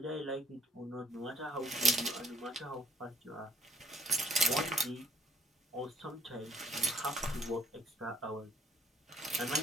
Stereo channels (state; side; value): normal; both; correlation 0.62